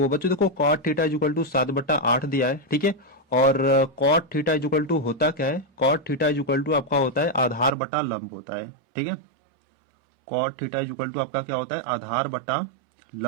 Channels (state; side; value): drops out; left; at 7.8 s